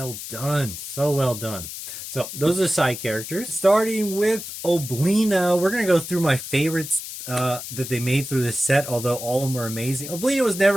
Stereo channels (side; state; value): left; noise; hiss, 9 dB below the sound